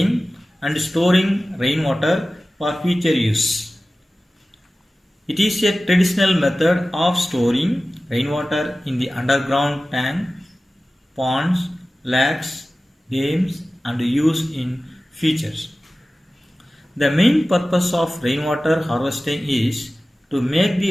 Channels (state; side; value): normal; both; correlation 0.96